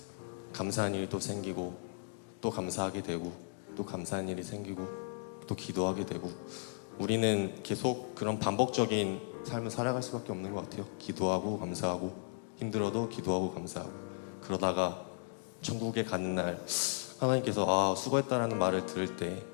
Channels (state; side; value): silent; right; digital silence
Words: 감사한 일이 또 생기고 또 감사하게 되고 또 감사한 일이 생기고 또 기도하게 되고 우리는 계속 그런 반복적인 삶을 살아갈 수밖에 없는 것 같아요. 기도하고 감사하고 힘들어도 기도하고 감사하고 그러다가 천국에 가는 날 하나님께서 수고했다라는 말을 들을 때